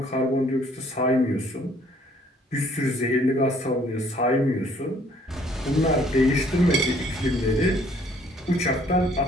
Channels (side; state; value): both; normal; correlation 0.61